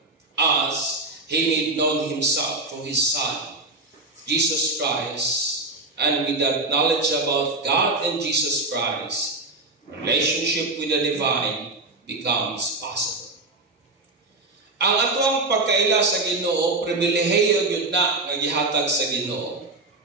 as He made known Himself through His Son, Jesus Christ. And with that knowledge about God and Jesus Christ, relationship with the divine becomes possible. Ang atong pagkaila sa Ginoo, pribilehiyo gyud na nga gihatag sa Ginoo.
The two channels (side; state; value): left; quieter; 3.1 dB